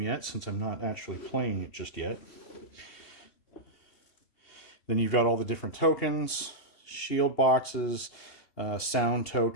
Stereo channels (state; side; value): late; right; 2.8 ms